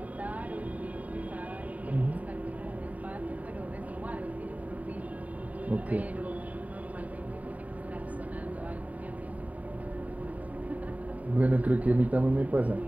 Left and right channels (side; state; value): left; late; 0.071 ms